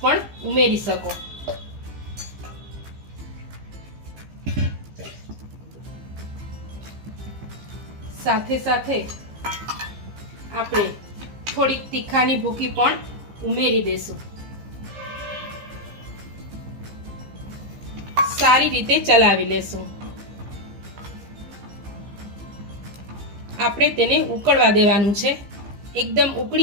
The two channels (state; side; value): late; left; 15 ms